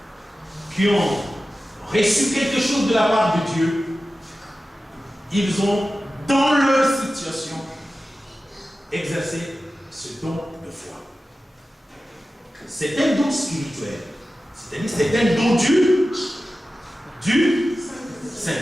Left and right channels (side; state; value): both; normal; correlation 0.94